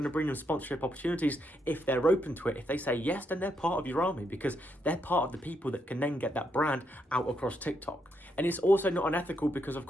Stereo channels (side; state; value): both; normal; correlation 0.78